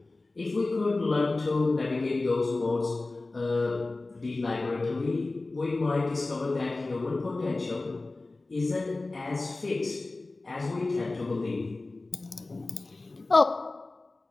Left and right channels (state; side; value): quieter; right; 3.2 dB